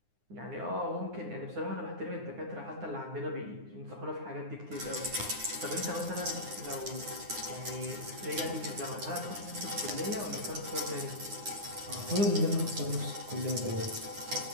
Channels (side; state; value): left; late; 9.7 ms